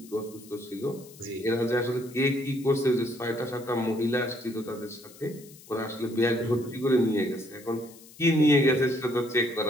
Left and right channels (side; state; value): left; noise; hiss, 21 dB below the sound